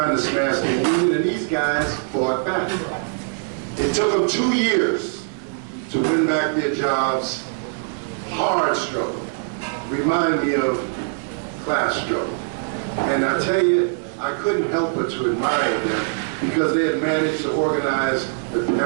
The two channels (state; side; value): silent; left; digital silence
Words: to smash the union, and these guys fought back. It took them 2 years to win back their jobs. Hard struggle. Remind me of class struggle. And I tell you, I couldn't help but to admire them because they had managed to organize the